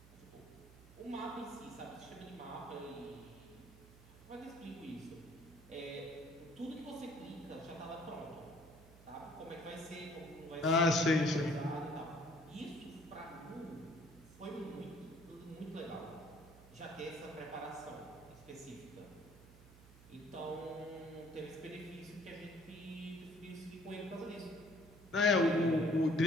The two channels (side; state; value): right; noise; hum, 20 dB below the sound